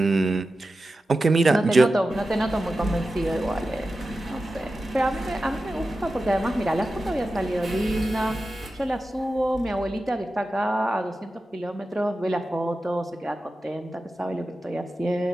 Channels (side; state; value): both; normal; correlation 0.93